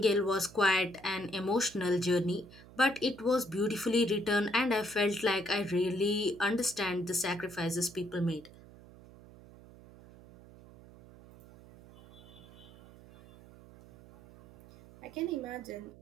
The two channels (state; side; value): noise; right; hum, 21 dB below the sound